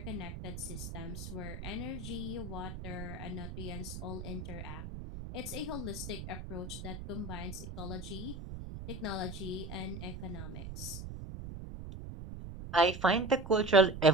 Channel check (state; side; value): noise; right; rumble, 8 dB below the sound